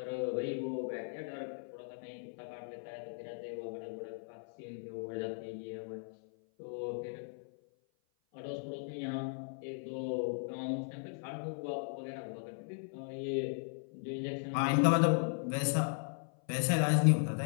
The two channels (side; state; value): right; silent; 53 dB below the other